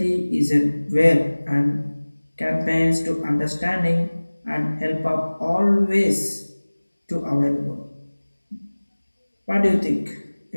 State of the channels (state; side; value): inverted; both; correlation -1.00